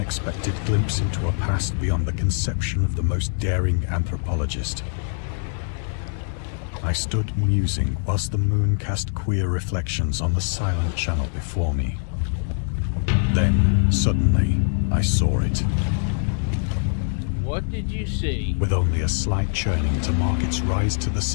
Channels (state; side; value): silent; right; 63 dB below the other